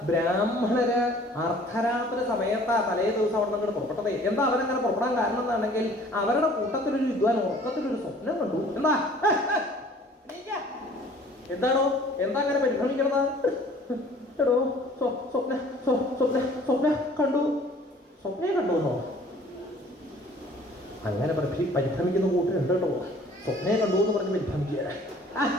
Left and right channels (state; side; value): normal; both; correlation 0.52